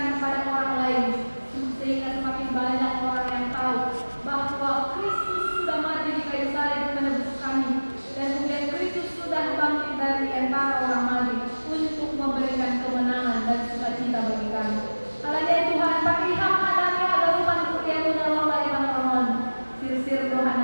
kepada orang lain. Sehingga semakin banyak orang yang tahu bahwa Kristus sudah mati di kayu salib menebus kami. Dan kemudian Kristus sudah bangkit dari antara orang mati untuk memberikan kemenangan dan sukacita bagi kami. Haleluya Tuhan, pakiham adami agarupan kuriamu na Allah ibang sir Tuhan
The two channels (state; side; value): inverted; both; correlation -1.00